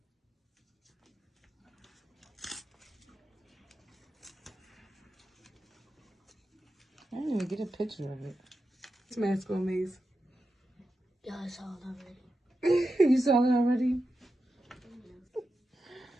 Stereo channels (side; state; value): both; normal; correlation 0.90